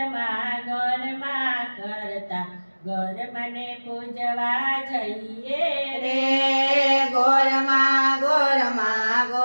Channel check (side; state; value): both; inverted; correlation -1.00